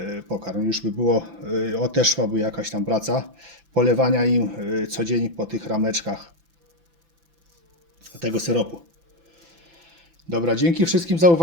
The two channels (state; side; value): late; left; 5.9 ms